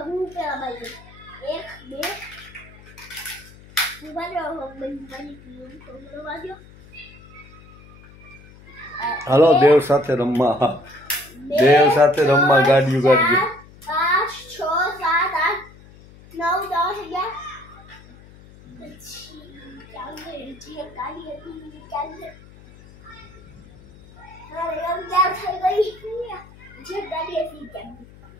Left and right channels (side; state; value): left; noise; hum, 22 dB below the sound